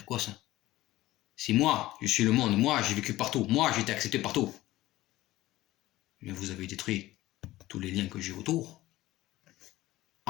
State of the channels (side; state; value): right; quieter; 16.7 dB